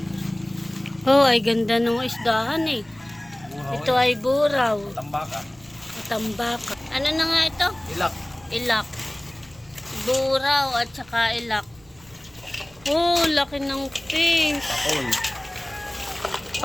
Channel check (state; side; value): noise; right; rumble, 27 dB below the sound